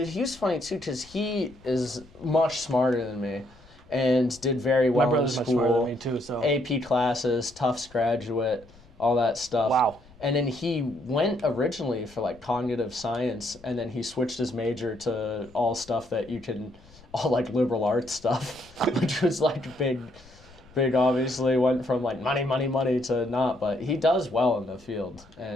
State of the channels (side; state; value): left; noise; rumble, 25 dB below the sound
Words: was funny too because he is much smarter than me and did very well in school. My brother's much smarter than me too, so. AP classes, Tufts graduate, all that stuff. Wow. And then he went originally for like cognitive science, and then he switched his major to all stuff that you can, all like liberal arts stuff, which was like big obviously, went from like money to not, but he does well in the field